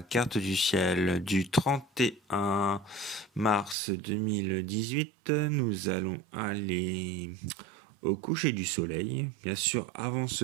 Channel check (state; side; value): drops out; left; at 3.8 s